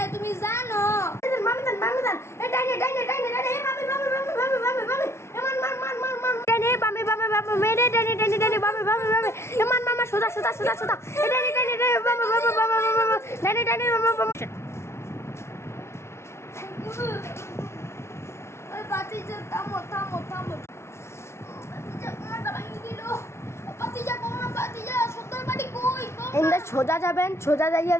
তুমি জানো? মামি দান এ ডাইনে এ মামি ডাইনে বামে মেরে ডাইনে এ মামা সোজা এ ডাইনে ডাইনে ওই বাতিজা থামো বাতিজা কোনটা ভাঙি দিল। বাতিজা সর্দার বাড়ি কই? এন্ডা সোজা যাইয়া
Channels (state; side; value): late; right; 0.13 ms